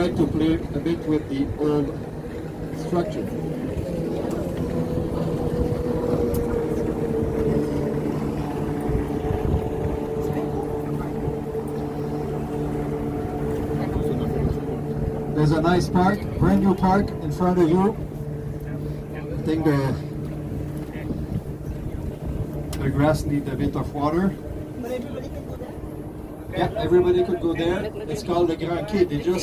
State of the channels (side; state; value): both; identical; correlation 1.00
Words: to play a bit with the old structure. There's a nice park, brand new park in front of you. I think the grass needs a bit of water. Yeah, everybody could go there. It's called the Grand Quai. They're